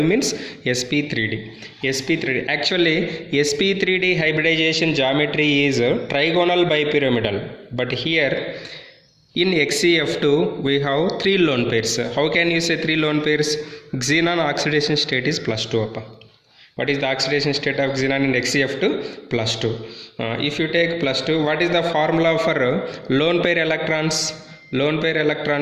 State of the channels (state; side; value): identical; both; correlation 1.00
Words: means sp3d. sp3d. Actually sp3d hybridization geometry is trigonal bipyramidal. But here in XeF2 we have 3 lone pairs. How can you say 3 lone pairs? Xenon oxidation state is +2. What is the oxidation state of xenon in XeF2? +2. If you take +2, what is the formula for lone pair electrons? Lone pair